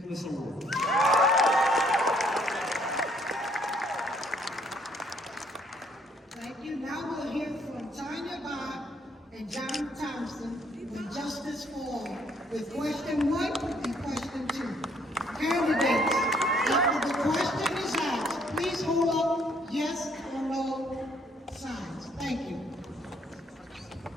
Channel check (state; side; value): normal; both; correlation 0.66